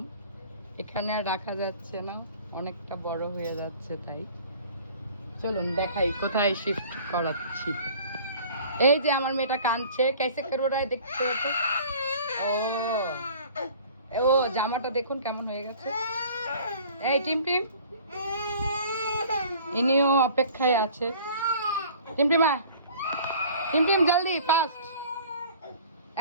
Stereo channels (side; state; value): both; inverted; correlation -0.48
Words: এখানে আর রাখা যাচ্ছে না, অনেকটা বড় হয়ে যাচ্ছে, তাই চলুন দেখাই কোথায় শিফট করাচ্ছি। এই যে আমার মেয়েটা কাঁদছে, कैसे कर रहा है দেখতে হতো। ও জামাটা দেখুন কেমন হয়ে গেছে। এই টিমটিম, ইনিও অপেক্ষায় আছে। টিমটিমা, টিমটিম জলদি ফাস্ট।